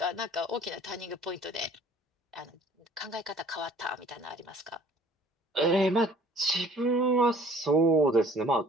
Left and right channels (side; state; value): both; normal; correlation 0.52